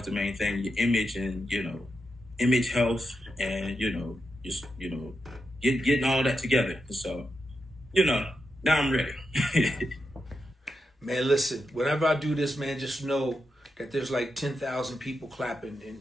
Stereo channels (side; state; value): both; normal; correlation 0.86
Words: the main thing, your image and, image health and, just, getting all that together. So, now I'm ready. Man, listen, whenever I do this, man, just know that there's like 10,000 people clapping